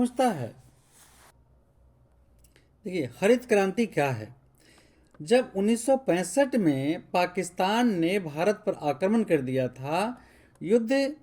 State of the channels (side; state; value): both; identical; correlation 1.00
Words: है। देखिए हरित क्रांति क्या है? जब 1965 में पाकिस्तान ने भारत पर आक्रमण कर दिया था, युद्ध